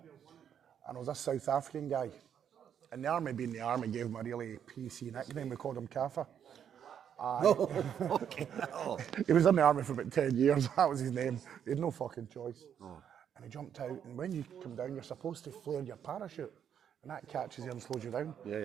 and there was a South African guy. And the army, being the army, gave him a really PC nickname. We called him Kafa. No, fucking hell. He was in the army for about 10 years. That was his name. He had no fucking choice. Oh. And he jumped out. And when you come down, you're supposed to flare your parachute, and that catches you and slows you down.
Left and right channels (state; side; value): quieter; left; 8.7 dB